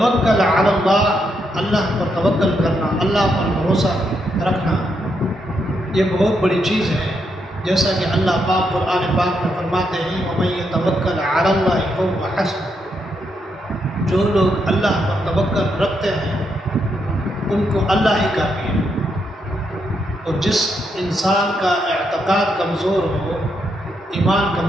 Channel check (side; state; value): both; normal; correlation 0.79